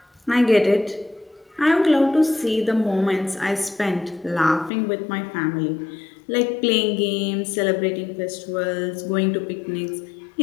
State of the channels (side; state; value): right; drops out; at 4.7 s